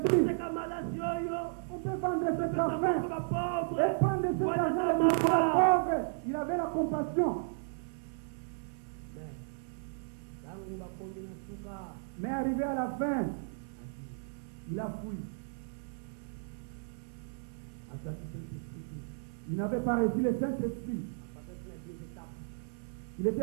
on peut vendre cet argent et prendre cet argent et mettre à la pauvre. Il avait la compassion. Mais arrivé à la fin, il a fui. Il n'avait pas reçu le Saint-Esprit. Il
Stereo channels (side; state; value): left; silent; 55 dB below the other